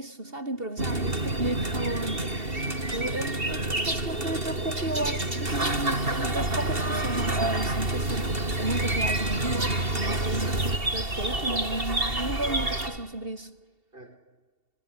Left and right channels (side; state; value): left; late; 2.7 ms